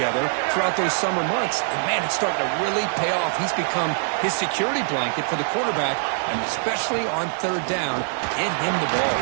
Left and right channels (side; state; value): left; silent; digital silence